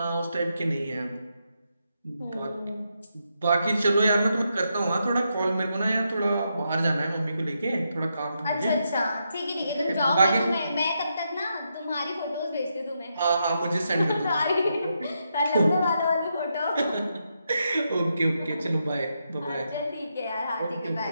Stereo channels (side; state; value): both; inverted; correlation -0.82